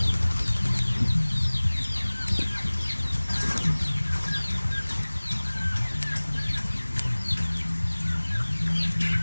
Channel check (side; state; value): both; inverted; correlation -1.00